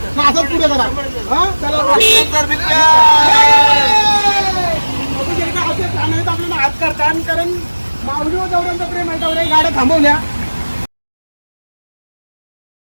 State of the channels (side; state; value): both; inverted; correlation -1.00